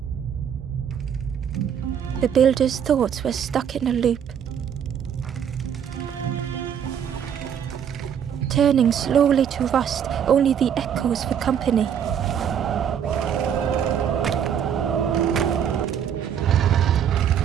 The builder's thoughts were stuck in a loop, turning slowly to rust, only the echoes for company.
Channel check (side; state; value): left; quieter; 8.5 dB